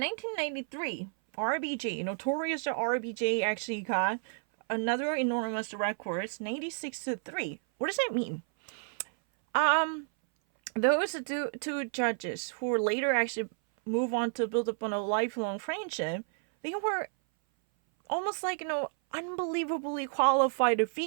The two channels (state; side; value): silent; left; 57 dB below the other